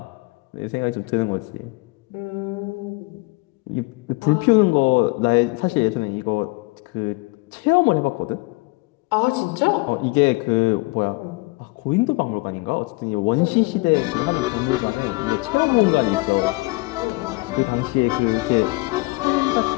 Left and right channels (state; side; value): quieter; right; 25.5 dB